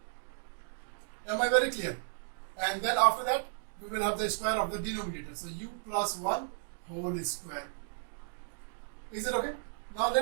Am I very clear? And then after that we will have the square of the denominator, so u plus 1 whole square. Is it okay? Now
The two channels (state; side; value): silent; left; digital silence